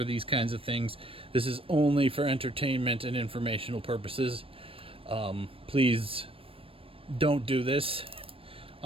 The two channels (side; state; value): left; late; 0.27 ms